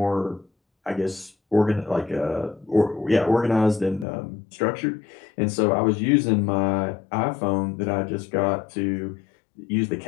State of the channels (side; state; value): right; drops out; at 4.0 s